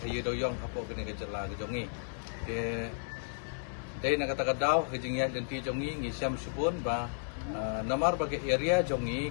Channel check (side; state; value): right; silent; digital silence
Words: doyong hapo kena ke jela ke jongi ke dai na kata kadau ke jing ya dan ti jongi ngi siam supun ba namar bagi area jongi